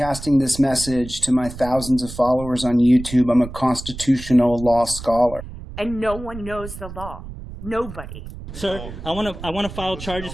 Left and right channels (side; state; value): right; noise; rumble, 12 dB below the sound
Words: this message to my thousands of followers on YouTube. I'm a constitutional law scholar. And no one knows the law. Nobody. Sir, I want to file